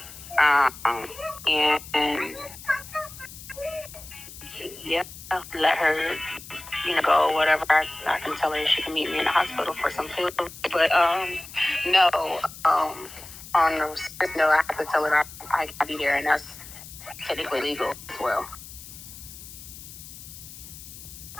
And yeah, let her, go whatever. I can tell her she can meet me in the hospital for some food. But no, on the serious note, I have to tell her I gotta be there, and that's technically legal as well.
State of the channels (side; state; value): left; noise; hiss, 15 dB below the sound